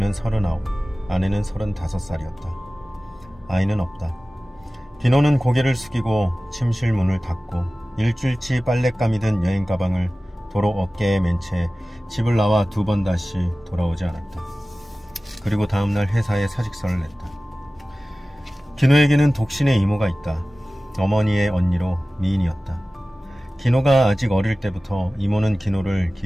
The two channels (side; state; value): both; normal; correlation 0.97